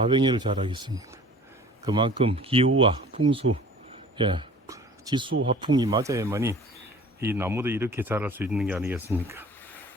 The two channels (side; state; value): both; normal; correlation 0.46